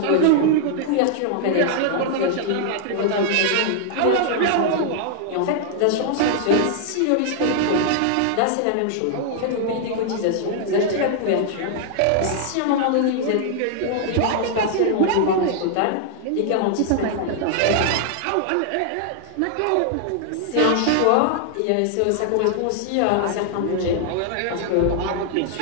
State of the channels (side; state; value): both; different; correlation -0.01